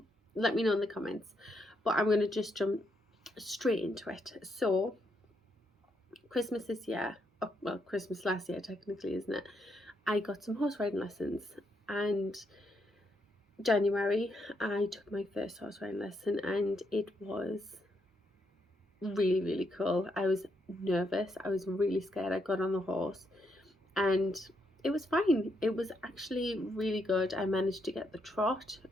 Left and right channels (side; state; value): both; normal; correlation 0.78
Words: let me know in the comments. But I'm going to just jump straight into it. So Christmas this year, oh, well, Christmas last year technically, isn't it? I got some horse riding lessons, and January I took my first horse riding lesson, and it was really cool. I was nervous, I was really scared. I got on the horse and it was fine. It was actually really good. I managed to get the trot,